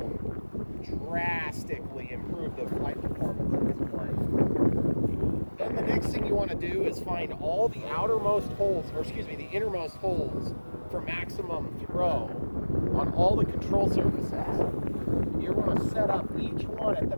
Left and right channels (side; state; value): both; inverted; correlation -1.00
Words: drastically improve the flight performance of this plane. Then the next thing you want to do is find all the outermost holes, or excuse me, the innermost holes for maximum throw on all the control surfaces. You want to set up each one at the